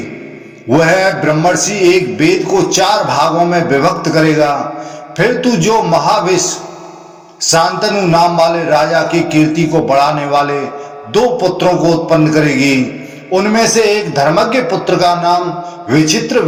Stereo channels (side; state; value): both; identical; correlation 1.00